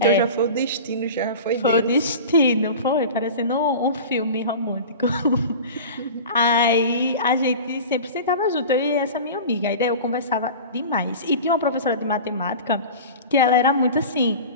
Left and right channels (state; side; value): inverted; both; correlation -0.34